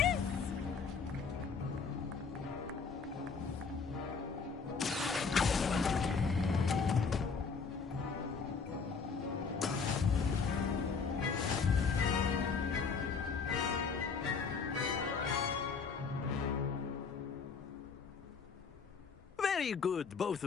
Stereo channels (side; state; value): right; quieter; 5.3 dB